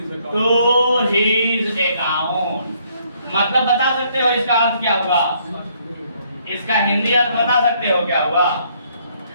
to his account. मतलब बता सकते हो इसका अर्थ क्या हुआ? इसका हिंदी अर्थ बता सकते हो क्या हुआ?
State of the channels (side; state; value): both; inverted; correlation -0.67